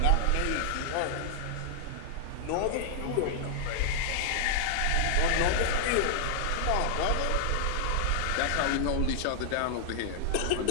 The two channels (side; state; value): both; different; correlation -0.01